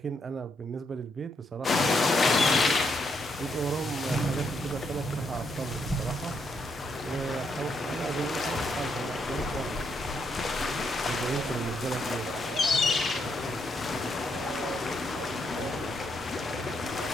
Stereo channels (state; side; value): normal; both; correlation 0.77